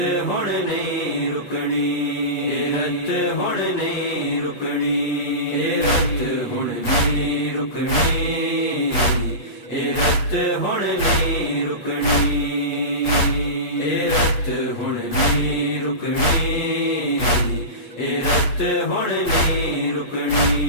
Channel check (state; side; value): late; right; 8.3 ms